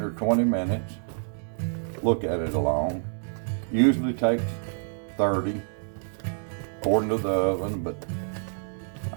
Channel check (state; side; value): silent; left; digital silence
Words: or 20 minutes. Look at it along. Usually takes 30 according to the oven, but